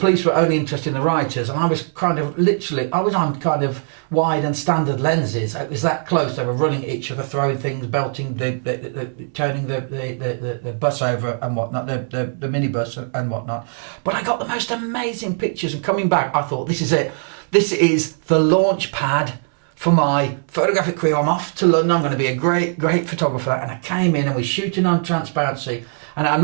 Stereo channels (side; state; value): left; silent; 65 dB below the other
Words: were only interested in the rioters. And I was I was on kind of wide and standard lenses. It was that close. They were running at each other, throwing things, belting, turning the bus over and whatnot, the minibus and whatnot. But I got the most amazing pictures. And coming back, I thought, this is it. This is the launch pad for my photographic career. I'm off to London. I'm going to be a great photographer. And I came in and we're shooting on transparency. And I'm